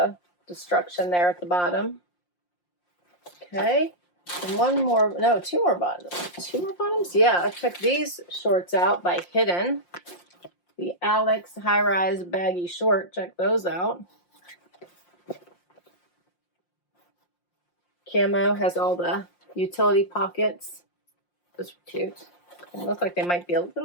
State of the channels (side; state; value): right; late; 5.7 ms